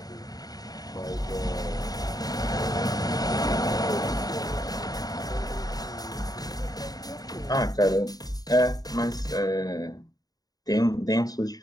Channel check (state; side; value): late; right; 0.18 ms